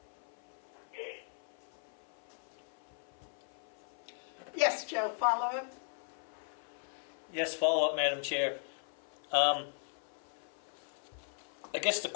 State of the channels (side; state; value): right; silent; 52 dB below the other